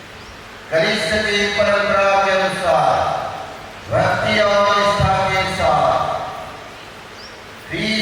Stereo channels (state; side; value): identical; both; correlation 1.00